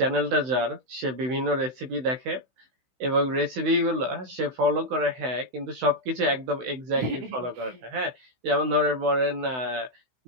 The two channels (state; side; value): late; left; 16 ms